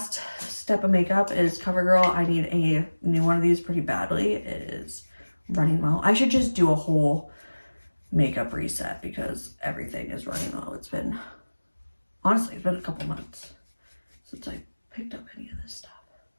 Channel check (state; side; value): inverted; both; correlation -1.00